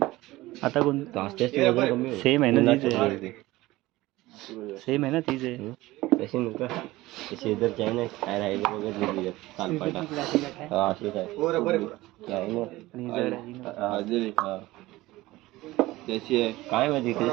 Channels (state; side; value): quieter; left; 18.5 dB